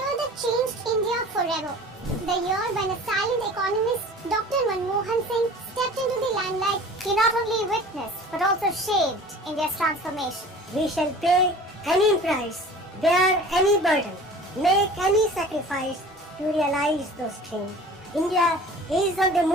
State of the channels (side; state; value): both; normal; correlation 0.43